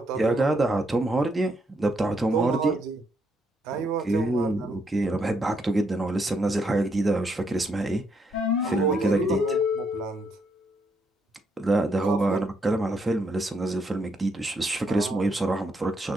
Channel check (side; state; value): both; normal; correlation 0.76